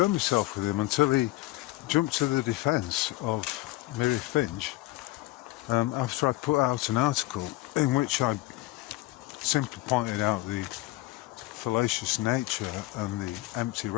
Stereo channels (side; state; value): right; quieter; 18.4 dB